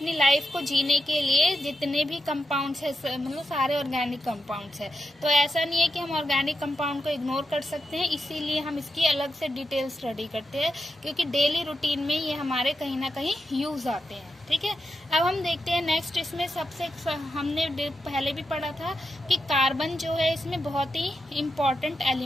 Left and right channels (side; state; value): both; normal; correlation 0.87